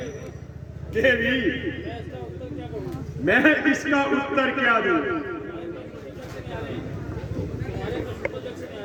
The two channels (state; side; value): identical; both; correlation 1.00